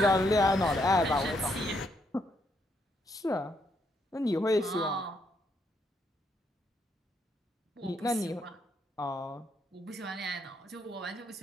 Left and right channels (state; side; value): normal; both; correlation 0.75